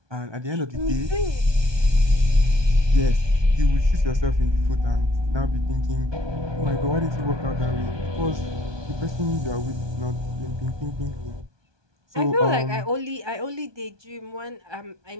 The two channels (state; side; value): late; left; 1.2 ms